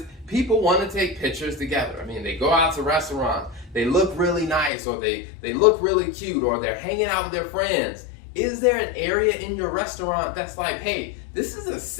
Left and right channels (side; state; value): right; drops out; at 4.7 s